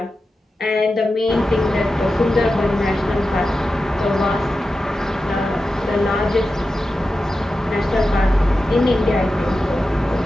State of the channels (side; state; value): both; normal; correlation 0.92